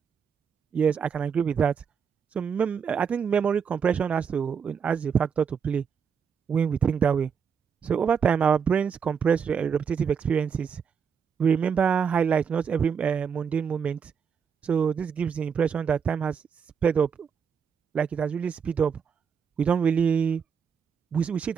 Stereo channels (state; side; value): quieter; left; 6.7 dB